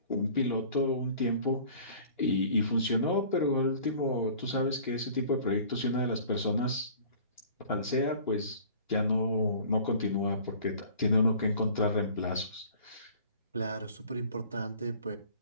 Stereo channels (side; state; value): both; inverted; correlation -0.48